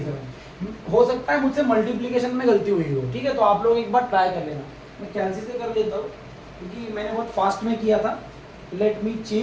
हो सकता है मुझसे मल्टीप्लिकेशन में गलती हुई हो। ठीक है, तो आप लोग एक बार ट्राई कर लेना। मैं कैंसिल से कर लेता हूँ क्योंकि मैंने बहुत फास्ट में किया था। Let me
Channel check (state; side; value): identical; both; correlation 1.00